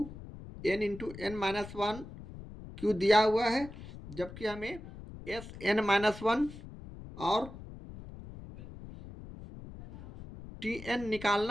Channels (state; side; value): noise; left; rumble, 14 dB below the sound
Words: n into n minus one Q दिया हुआ है, जबकि हमें एस n माइनस वन और टी एन